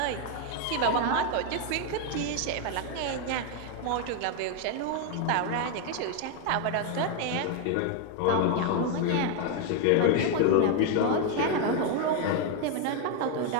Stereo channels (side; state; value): both; different; correlation 0.01